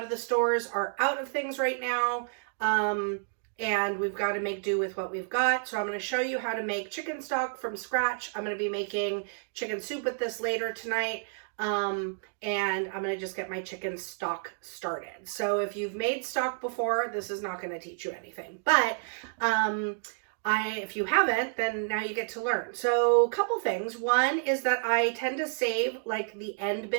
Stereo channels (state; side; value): silent; left; digital silence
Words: of the stores are out of things right now. And we've got to make do with what we've got. So I'm going to show you how to make chicken stock from scratch. I'm going to be making chicken soup with this later tonight. And I'm going to just get my chicken stock started. So if you've made stock before, this is not going to teach you anything. But if you haven't, then now you get to learn. So a couple things. One is that I tend to save like the end